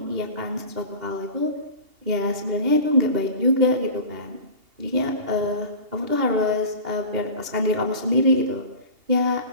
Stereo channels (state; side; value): late; left; 2.8 ms